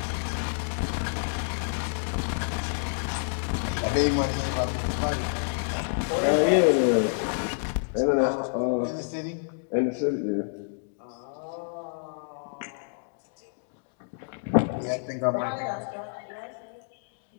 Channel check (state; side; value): silent; right; digital silence